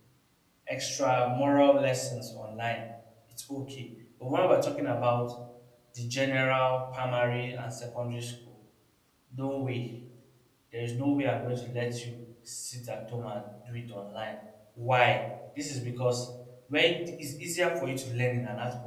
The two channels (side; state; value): both; identical; correlation 1.00